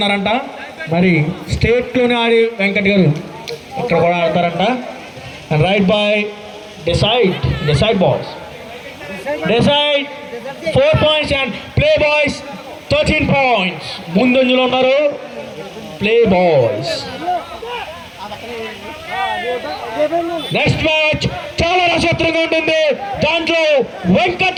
మరి స్టేట్ లోనే ఆడి వెంకట్ గారు ఇక్కడ కూడా ఆడతారంట. Right by decide boys. Decide 4 points and play boys 13 points. ముందంజలో ఉన్నారు ప్లే బాయ్స్. నెక్స్ట్ మ్యాచ్ చాలా రసవత్రంగా ఉంటుంది. దాంట్లో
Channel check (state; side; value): identical; both; correlation 1.00